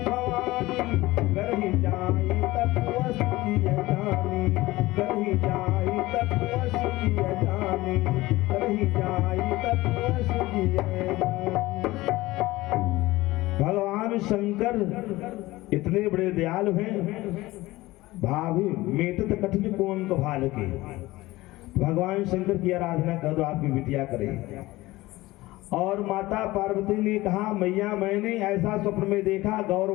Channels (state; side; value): quieter; right; 18.9 dB